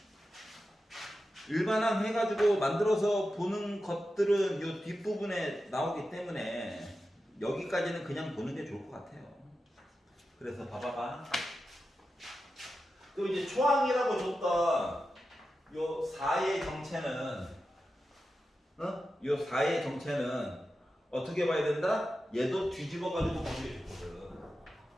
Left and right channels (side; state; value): both; normal; correlation 0.91